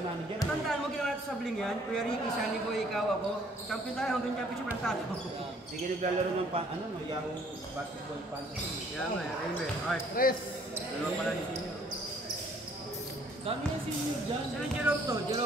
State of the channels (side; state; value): both; normal; correlation 0.61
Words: manager. tandaan mo ginawa natin sa sabling yan. Kuya Ricky, Sunny Boy, ikaw, ako. Champion tayo hanggang championship lang tayo. Sige, naglalaro ng Yahoo Basketball Fantasy. Kaya nga, Raymond. Alright, Tres! dalawa pala ni Senior. Dami yung senior dyan. Sino Jerome to?